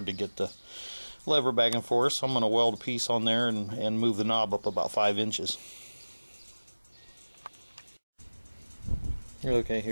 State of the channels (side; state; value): both; inverted; correlation -1.00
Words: to get the lever back and forth, so I'm going to weld a piece on there and move the knob up about 5 inches. Okay,